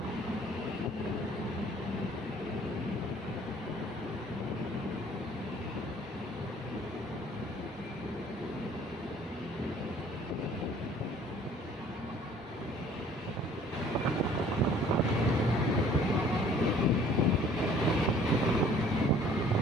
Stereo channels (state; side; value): normal; both; correlation 0.54